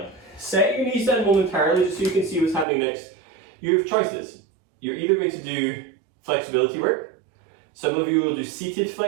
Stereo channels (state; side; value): drops out; left; at 2.7 s